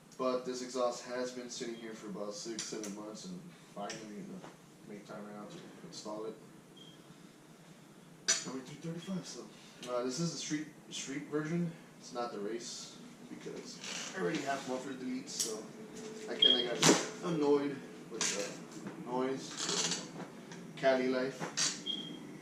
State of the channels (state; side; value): identical; both; correlation 1.00